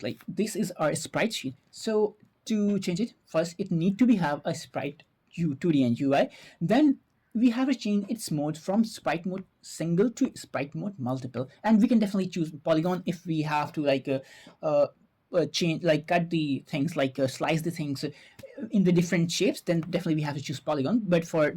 like this is our sprite sheet. So to change it, first it need to be have a sprite 2D and UI. Then we have to change its mode from sprite mode single to sprite mode multiple, and we can definitely choose polygon if we have to like change, like cut the things, like slice the things in the different shapes, then definitely we have to choose polygon. But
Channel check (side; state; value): both; identical; correlation 1.00